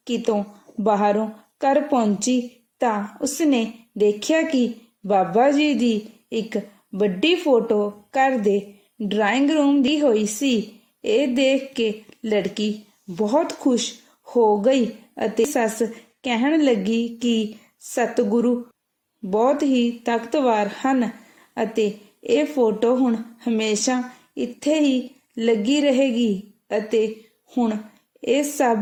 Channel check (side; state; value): both; identical; correlation 1.00